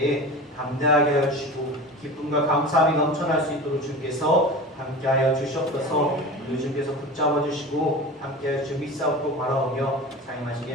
담대하게 하여 주시고 기쁨과 감사함이 넘쳐날 수 있도록 주께서 함께하여 주시옵소서. 우리 주께서 붙잡아 주시고 함께하여 주 믿사옵고 바라오며 사용하신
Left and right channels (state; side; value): normal; both; correlation 0.32